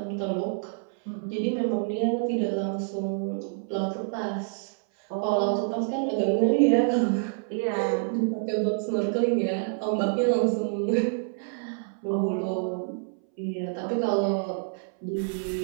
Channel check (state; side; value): silent; left; 60 dB below the other